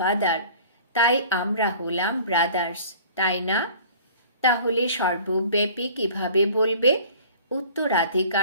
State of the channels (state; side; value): inverted; both; correlation -0.47